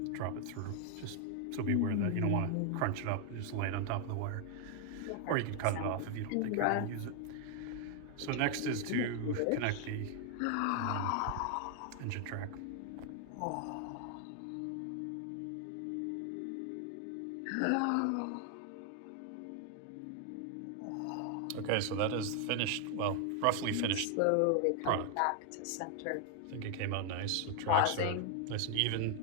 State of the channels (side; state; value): both; different; correlation 0.00